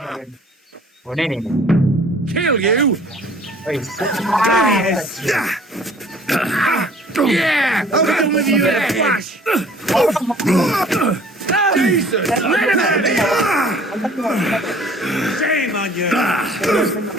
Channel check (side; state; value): both; normal; correlation 0.53